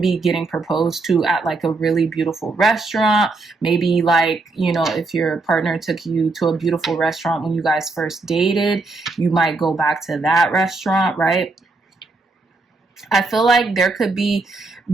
be getting proposed to at like a really beautiful restaurant. Maybe like, you know, if your partner took you to a beautiful restaurant when you guys first dated, you might go back to that restaurant, right? I feel like there could be,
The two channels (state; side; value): quieter; left; 3.5 dB